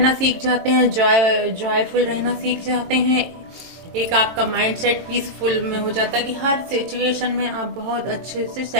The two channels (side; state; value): left; late; 23 ms